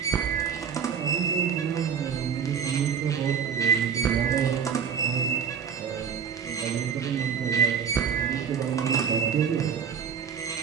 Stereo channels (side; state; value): left; quieter; 7.3 dB